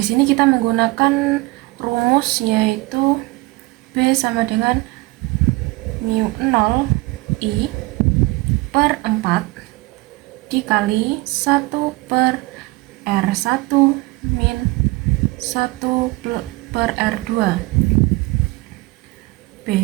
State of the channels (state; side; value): quieter; left; 22.3 dB